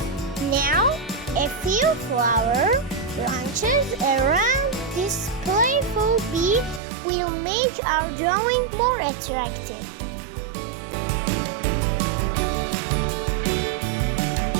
Now, a few flower branches around this playful bee will make our drawing more attractive.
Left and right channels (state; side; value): drops out; left; at 6.8 s